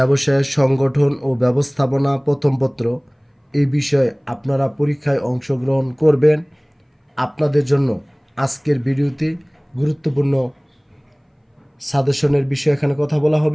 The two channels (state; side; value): identical; both; correlation 1.00